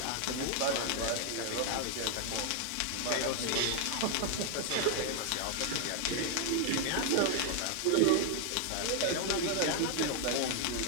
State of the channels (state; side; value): different; both; correlation 0.00